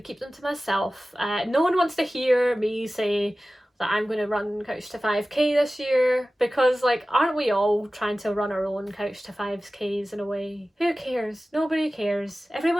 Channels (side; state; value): both; normal; correlation 0.96